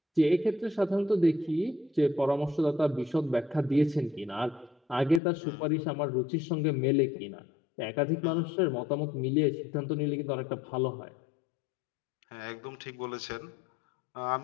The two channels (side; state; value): right; drops out; at 5.2 s